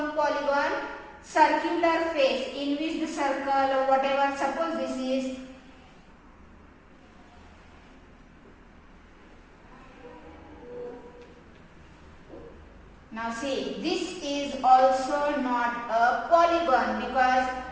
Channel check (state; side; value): identical; both; correlation 1.00